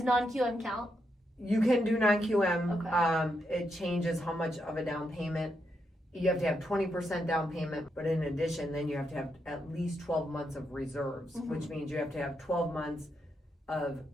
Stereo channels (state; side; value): normal; both; correlation 0.82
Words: non-QM count? You can do non-QM. Okay. It changes how much of a down payment. You have to have 20% down payment, but in addition, then you have to have at least 12 months of reserves, which means you have to have 12 months of